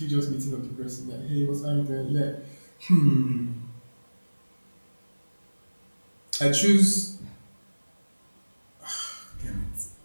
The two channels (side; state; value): both; inverted; correlation -1.00